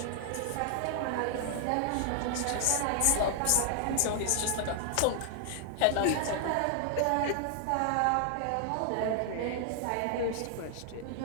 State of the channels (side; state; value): both; different; correlation 0.00